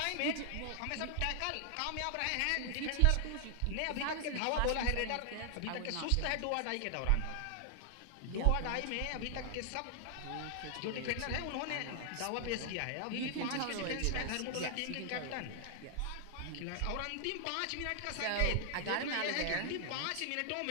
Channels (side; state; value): both; different; correlation 0.00